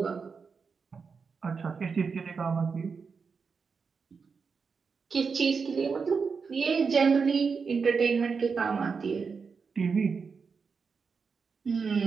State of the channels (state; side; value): quieter; left; 5.3 dB